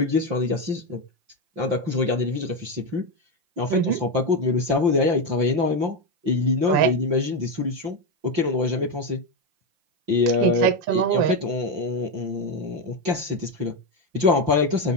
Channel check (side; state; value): left; late; 5.8 ms